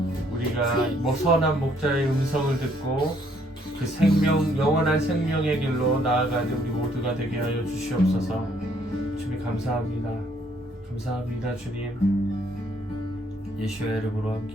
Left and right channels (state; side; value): normal; both; correlation 0.67